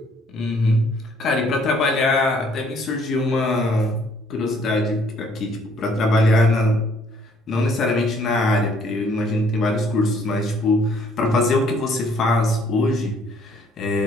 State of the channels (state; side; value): normal; both; correlation 0.63